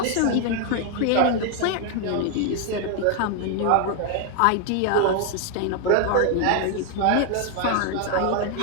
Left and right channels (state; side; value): different; both; correlation 0.00